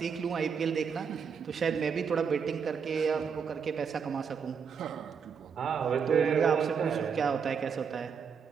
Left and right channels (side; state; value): left; quieter; 6.5 dB